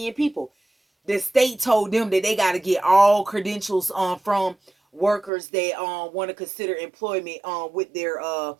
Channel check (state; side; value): drops out; left; at 5.3 s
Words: people. The state told them that they got to get all credentials from workers that want to consider employment with their